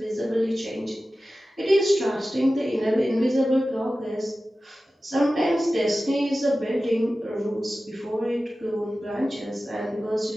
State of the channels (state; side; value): normal; both; correlation 0.95